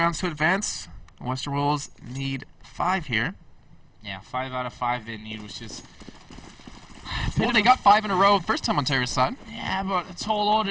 to advance. The Western Wolves need 5 here. Yeah, 5 out of 5 they need, which is... Well, they got 5 in a row first time on Terrace side. Yeah, but a tall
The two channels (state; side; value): identical; both; correlation 1.00